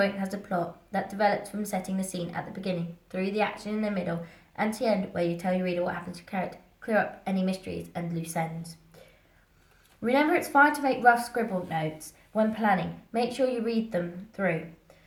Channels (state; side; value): identical; both; correlation 1.00